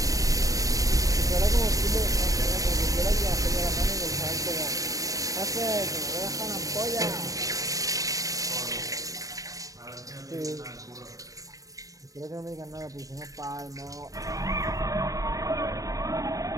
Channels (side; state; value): left; late; 0.17 ms